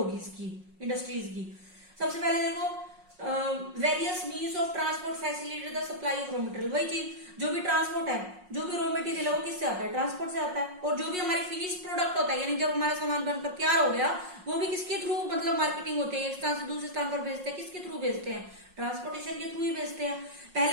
इसकी, इंडस्ट्रीज की। सबसे पहले देखो various means of transport facilitate the supply of raw material. वही चीज, जो भी ट्रांसपोर्ट है, जो भी रॉ मटेरियल है वो किससे आता है, ट्रांसपोर्ट से आता है। और जो भी हमारी फिनिश प्रोडक्ट होता है, यानी जब हमारा सामान बनकर तैयार हो गया, वो भी किसके थ्रू मतलब मार्केटिंग होती है, एक स्थान से दूसरे स्थान पर भेजते हैं, किसके थ्रू भेजते हैं, ट्रांसपोर्टेशन के थ्रू ही भेजते हैं।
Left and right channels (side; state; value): left; late; 5.5 ms